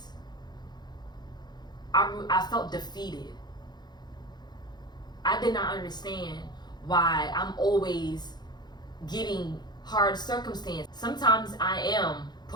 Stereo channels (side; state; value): right; late; 0.21 ms